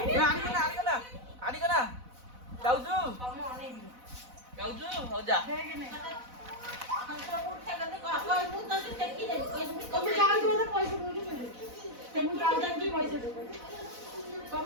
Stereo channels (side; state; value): left; late; 4.0 ms